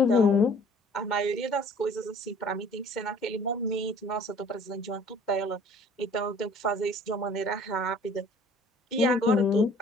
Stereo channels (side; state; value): both; normal; correlation 0.52